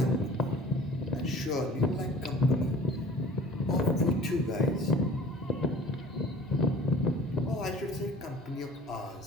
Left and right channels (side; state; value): both; normal; correlation 0.47